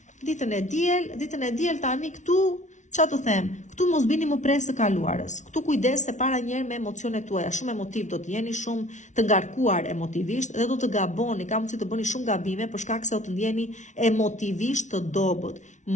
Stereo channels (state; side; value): late; right; 0.36 ms